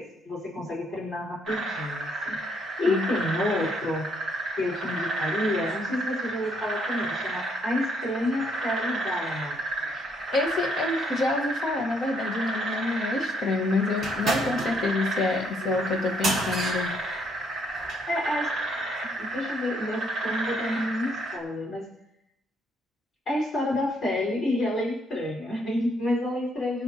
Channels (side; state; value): both; normal; correlation 0.70